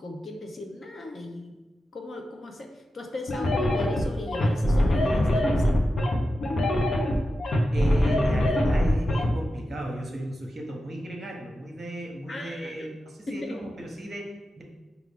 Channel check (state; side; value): normal; both; correlation 0.91